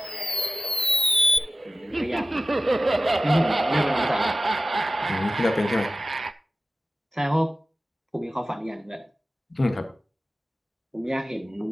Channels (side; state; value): both; normal; correlation 0.95